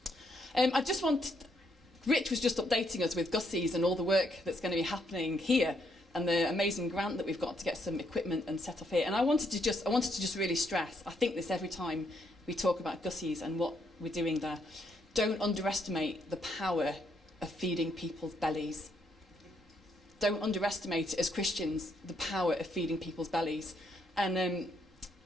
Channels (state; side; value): normal; both; correlation 0.74